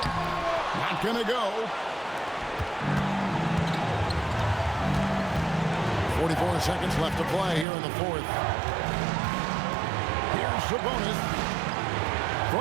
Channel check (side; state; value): left; drops out; at 7.7 s